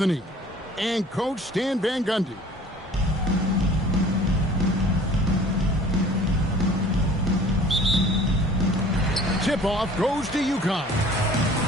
and Coach Stan Van Gundy. Tip-off goes to UConn.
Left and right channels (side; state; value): both; normal; correlation 0.49